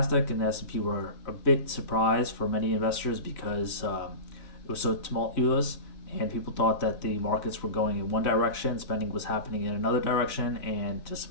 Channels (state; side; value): late; right; 4.0 ms